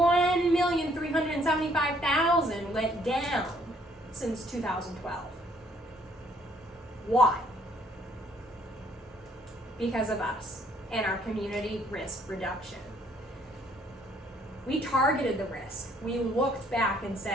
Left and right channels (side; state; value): both; normal; correlation 0.65